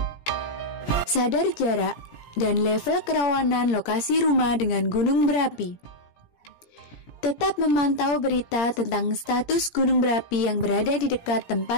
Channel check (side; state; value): right; late; 17 ms